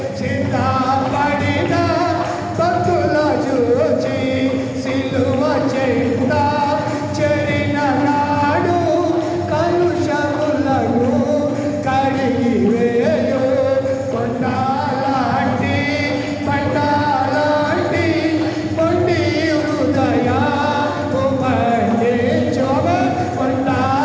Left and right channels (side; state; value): both; identical; correlation 1.00